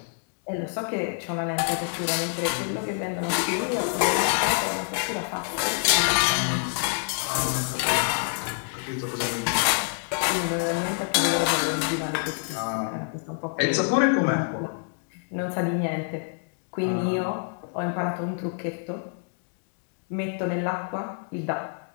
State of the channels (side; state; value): right; silent; 60 dB below the other